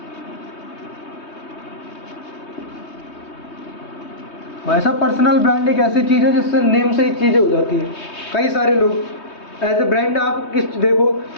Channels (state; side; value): late; right; 3.2 ms